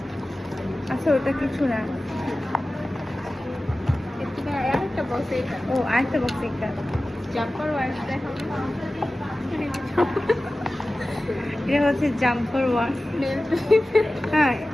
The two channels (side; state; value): both; normal; correlation 0.96